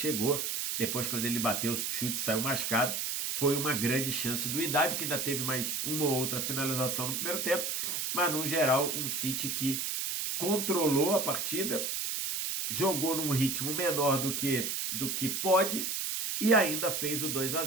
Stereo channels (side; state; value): right; noise; hiss, 1 dB below the sound